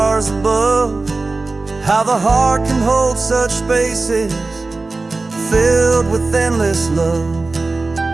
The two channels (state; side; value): quieter; left; 3.5 dB